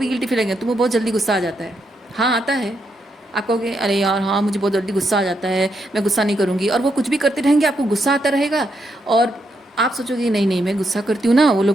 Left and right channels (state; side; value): normal; both; correlation 0.80